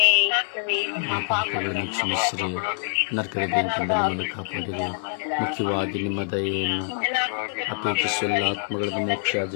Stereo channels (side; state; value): right; silent; digital silence